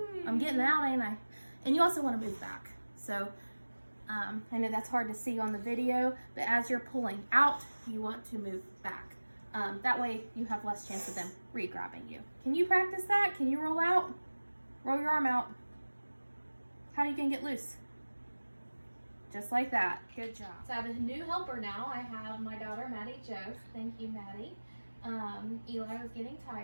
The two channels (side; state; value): both; inverted; correlation -1.00